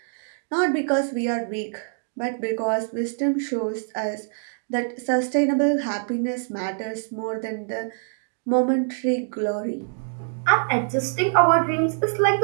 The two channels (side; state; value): left; silent; digital silence